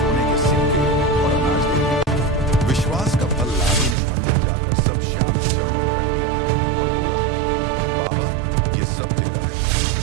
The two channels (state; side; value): drops out; left; at 4.0 s